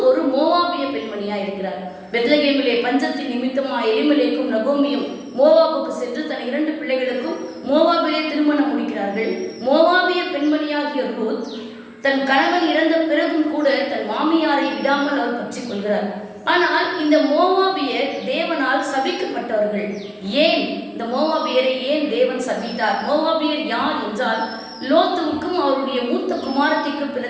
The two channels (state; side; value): identical; both; correlation 1.00